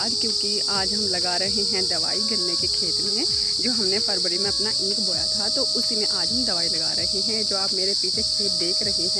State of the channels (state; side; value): identical; both; correlation 1.00